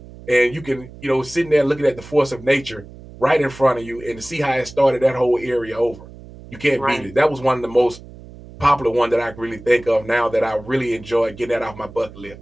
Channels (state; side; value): noise; right; hum, 18 dB below the sound